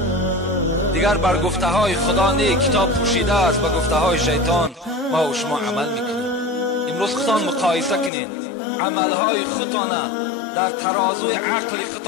دیگر بر گفته های خدا نه کتاب پوشیده است، بر گفته های شیطان ما و شما عمل می کنیم. امروز خودتان مقایسه کنین، عمل های خودتان در ترازوی عقل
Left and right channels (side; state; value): right; drops out; at 8.1 s